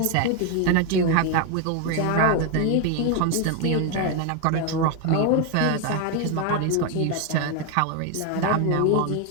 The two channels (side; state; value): both; different; correlation 0.01